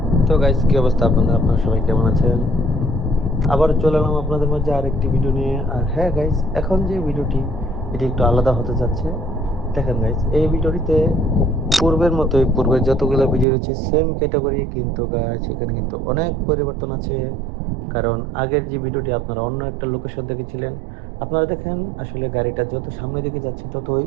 তো গাইস, কি অবস্থা আপনাদের? আপনারা সবাই কেমন আছেন? আবার চলে এলাম আপনাদের মাঝে আরেকটি ভিডিও নিয়ে। আর হ্যাঁ গাইস, এখন যে ভিডিওটি এটি একটু আলাদা হতে যাচ্ছে। দেখেন গাইস, এই ভিডিওটিতে পূর্বের মতোই, পূর্বের যতগুলো ভিডিও রয়েছে সেম ক্যাটাগরি, কিন্তু গাইস এখানে কিন্তু অনেক পরিবর্তন আছে। কারণ আগের যে ভিডিওটি আপনারা অন্য একটা লোকেশন দেখেছিলেন, আপনারা দেখেন আসলে গাড়িটা যত সামনের দিকে যাচ্ছে ততই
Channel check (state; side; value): drops out; left; at 13.5 s